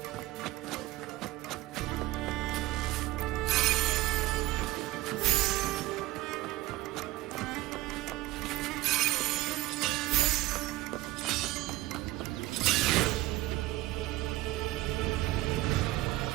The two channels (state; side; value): quieter; left; 18.1 dB